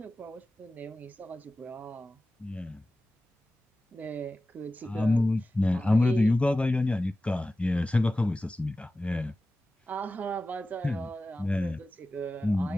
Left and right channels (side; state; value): both; normal; correlation 0.95